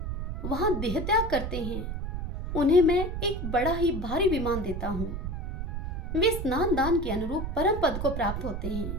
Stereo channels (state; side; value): noise; right; rumble, 4 dB below the sound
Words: वहां देह त्याग करते हैं, उन्हें मैं एक बड़ा ही भारी विमान देता हूँ। वे स्नान दान के अनुरूप परम पद को प्राप्त होते